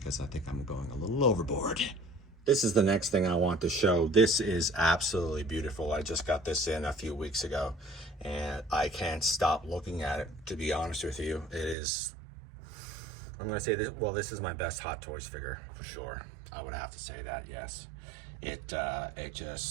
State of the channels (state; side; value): drops out; left; at 11.8 s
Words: I think I'm going a little overboard. This is the next thing I want to show. This is absolutely beautiful. I just got this in a few weeks ago, and I can't stop looking at it, to be honest with you. It is, I'm gonna say this, well, this is my best Hot Toys figure for sure. I would have to say that, yes. It